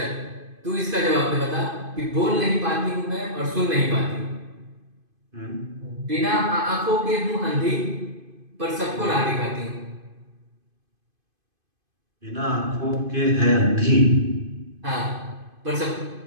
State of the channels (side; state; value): left; late; 2.5 ms